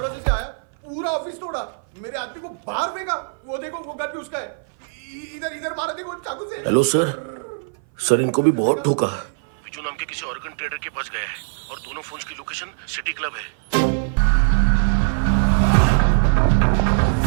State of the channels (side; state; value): left; silent; 58 dB below the other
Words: से आया, पूरा ऑफिस तोड़ा, मेरे आदमी को बाहर फेंका। वो देखो, वो गन भी उसका है। इधर इधर मारा, देखो चाकू से। हेलो सर, सर इनको भी बहुत ठोका। विजू नाम के किसी ऑर्गन ट्रेडर के पास गया है और दोनों फोन्स की लोकेशन सिटी क्लब है।